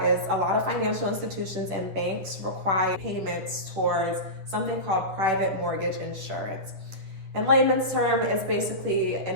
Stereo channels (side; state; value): left; late; 10 ms